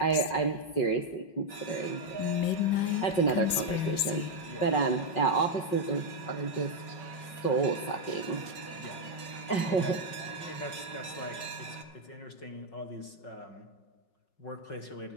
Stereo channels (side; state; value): right; late; 5.6 ms